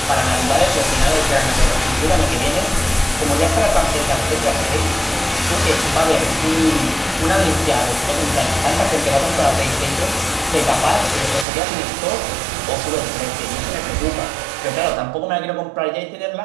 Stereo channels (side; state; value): left; drops out; at 11.5 s